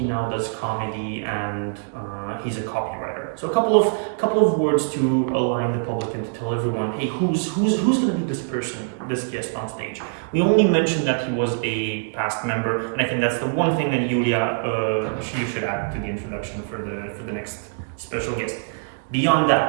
now does comedy, and he's a copywriter. So a couple of words to align the public and to tell everyone, hey, who's going to be this person, this guest on stage? We only mentioned that he was a past member, and I think that's the one thing that Julia, you should add to the introduction for the next special guest. Beyond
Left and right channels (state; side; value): silent; left; digital silence